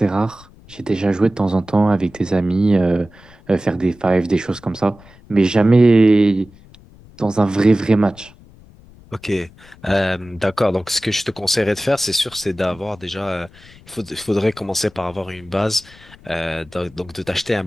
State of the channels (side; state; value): left; noise; rumble, 24 dB below the sound